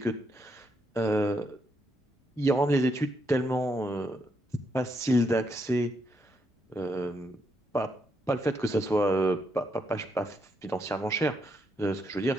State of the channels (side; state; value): both; normal; correlation 0.78